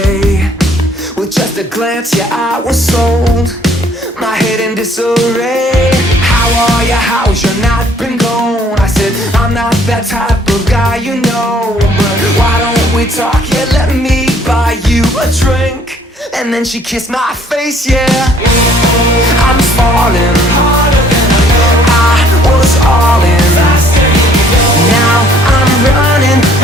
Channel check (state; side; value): normal; both; correlation 0.60